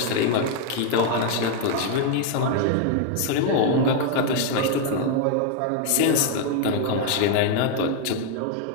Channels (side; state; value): both; different; correlation 0.00